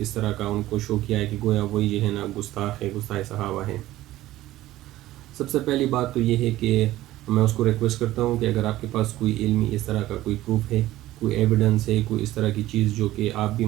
طرح کا ان کو شو کیا ہے کہ گویا وہی جو ہے نا گستاخ ہے، گستاخ صحابہ ہے۔ سب سے پہلی بات تو یہ ہے کہ میں اس کو ریکویسٹ کرتا ہوں کہ اگر آپ کے پاس کوئی علمی اس طرح کا کوئی پروف ہے، کوئی ایویڈنس ہے، کوئی اس طرح کی چیز جو کہ آپ بھی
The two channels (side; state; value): left; quieter; 15.6 dB